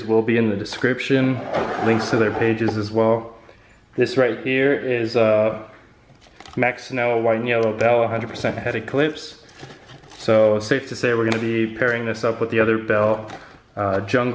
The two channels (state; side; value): identical; both; correlation 1.00